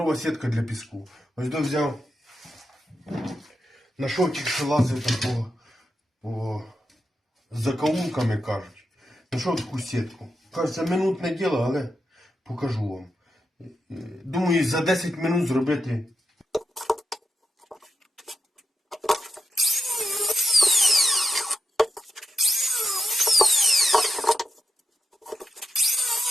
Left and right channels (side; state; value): both; normal; correlation 0.86